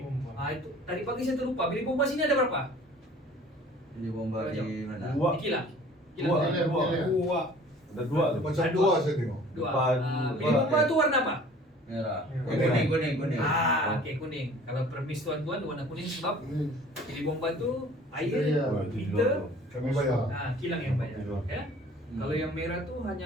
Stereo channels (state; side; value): normal; both; correlation 0.49